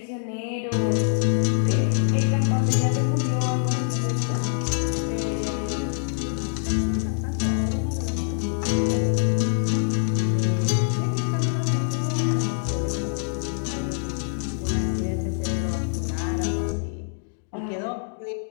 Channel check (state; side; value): silent; right; digital silence